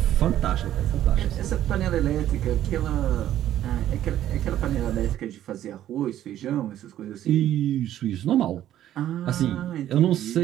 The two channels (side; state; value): left; quieter; 12.1 dB